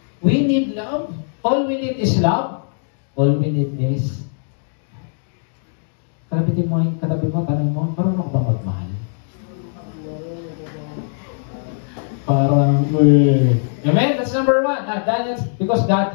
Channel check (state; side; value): silent; right; digital silence